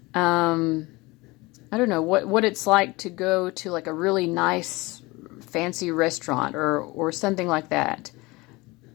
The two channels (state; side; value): quieter; right; 22.9 dB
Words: I don't know, what it's like to go to like a really nice, fancy restaurant or something like that.